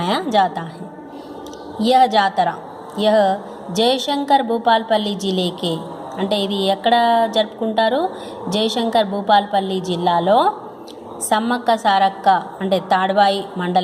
जाता है. यह जातरा जयशंकर भूपालपल्ली जिले के అంటే ఇది ఎక్కడ జరుపుకుంటారు? జయశంకర్ భూపాల్పల్లి జిల్లాలో సమ్మక్క సారక్క అంటే తాడ్వాయి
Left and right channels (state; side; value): identical; both; correlation 1.00